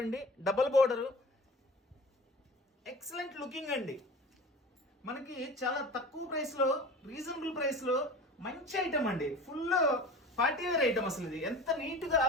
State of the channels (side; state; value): both; normal; correlation 0.38